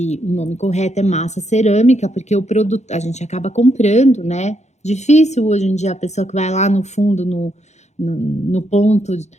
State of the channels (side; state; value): right; late; 0.33 ms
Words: o nome correto é massa cerâmica, porque o produto a gente acaba comprando, né? Difícil hoje em dia a pessoa que vai lá no fundo, no ponto